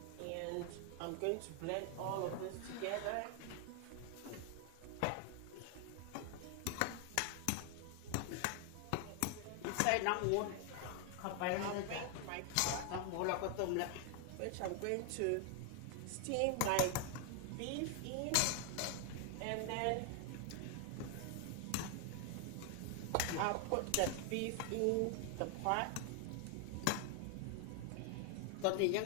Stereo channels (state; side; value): different; both; correlation 0.00